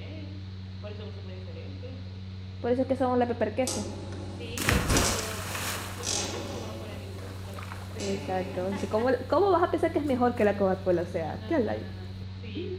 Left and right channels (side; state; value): both; identical; correlation 1.00